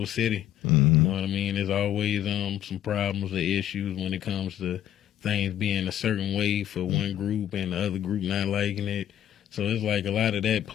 city. You know what I mean? There's always some problems or issues when it comes to things being a certain way for one group and the other group not liking it. So it's like a lot of that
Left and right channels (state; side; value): quieter; right; 11.2 dB